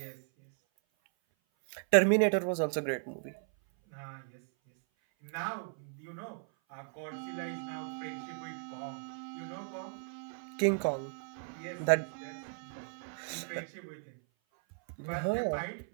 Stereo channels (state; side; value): silent; left; 54 dB below the other